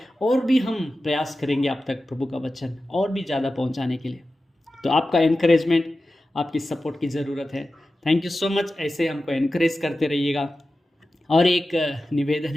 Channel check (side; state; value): both; normal; correlation 0.94